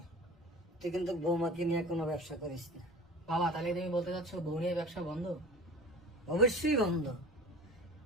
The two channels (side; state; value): both; normal; correlation 0.39